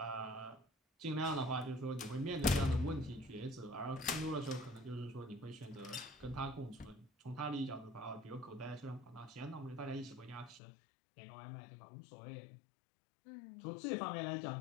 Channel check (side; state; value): right; drops out; at 10.6 s